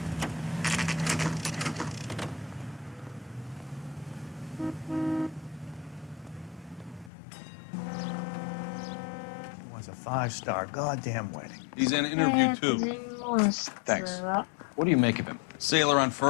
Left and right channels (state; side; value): drops out; right; at 7.1 s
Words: Was a 5-star goddamn wedding. He's in an interview too. Thanks. What do you make of him? Sailor on